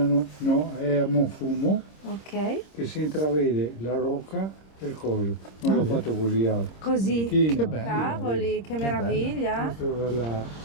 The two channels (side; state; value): right; late; 26 ms